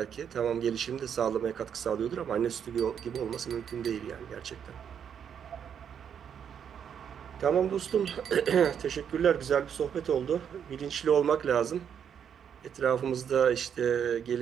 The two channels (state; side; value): quieter; left; 8.1 dB